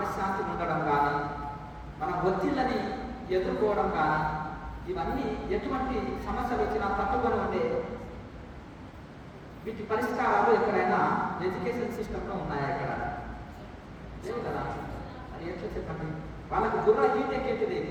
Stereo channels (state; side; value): identical; both; correlation 1.00